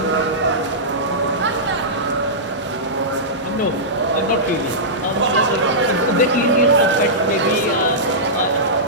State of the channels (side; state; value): both; normal; correlation -0.15